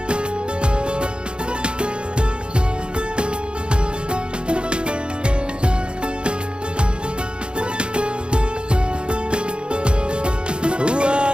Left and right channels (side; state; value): left; late; 0.053 ms